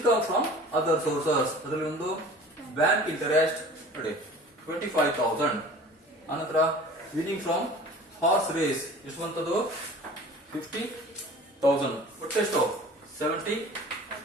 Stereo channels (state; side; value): normal; both; correlation 0.43